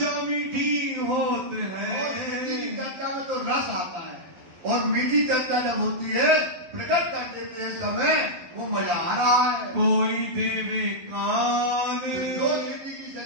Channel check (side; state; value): left; late; 12 ms